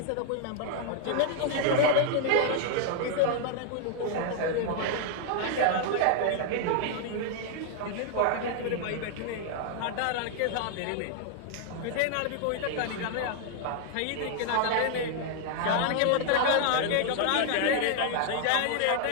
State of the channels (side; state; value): both; different; correlation 0.00